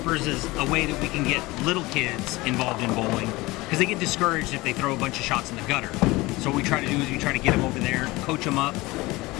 is a way that we can get little kids involved in bowling, because they get discouraged if they throw a bunch of shots in the gutter. So what we try to do is we try to get them over there, coach them up,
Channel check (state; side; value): quieter; right; 21.2 dB